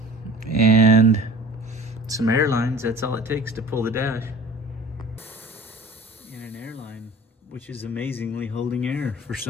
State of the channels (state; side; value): normal; both; correlation 0.44